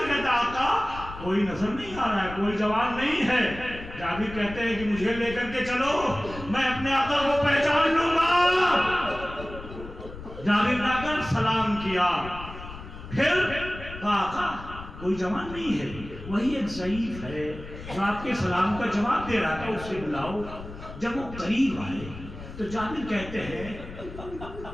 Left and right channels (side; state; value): left; noise; rumble, 13 dB below the sound